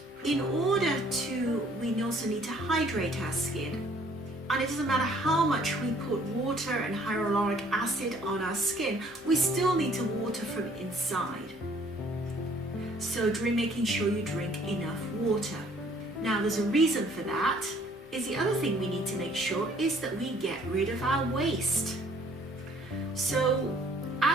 in order we also need to hydrate our skin. And it doesn't matter how much we put water and hyaluronic acid on our skin, we still need to water from inside. So making sure you drink enough water. Now there's a reason for that. Is the other thing we need to make sure is that we get rid of our waste. So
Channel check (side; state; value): both; normal; correlation 0.59